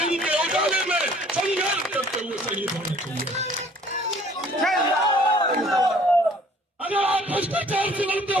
इनके उजाले में संघर्ष करते हुए शहीद होना चाहिए। अगर आप भ्रष्टाचार से लड़ते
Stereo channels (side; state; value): both; normal; correlation 0.55